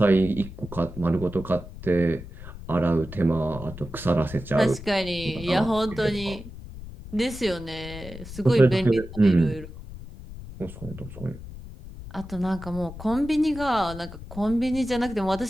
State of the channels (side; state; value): left; noise; rumble, 13 dB below the sound